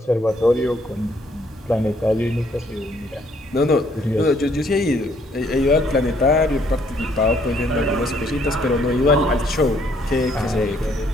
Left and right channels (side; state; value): both; normal; correlation 0.66